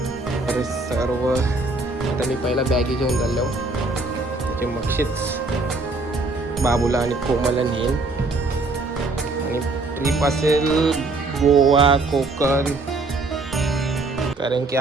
अरे सर्व आता मी पहिला बॅगी घेऊन चाललो म्हणजे मगशीच बाबूला आणि कोमलला नेईन. आणि ट्रिप असेल गोवा कोकण, कारण की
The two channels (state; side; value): quieter; left; 3.3 dB